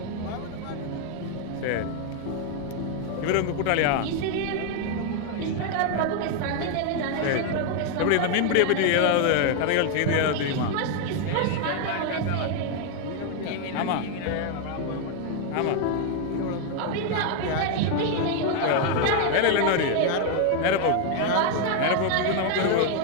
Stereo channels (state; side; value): different; both; correlation 0.01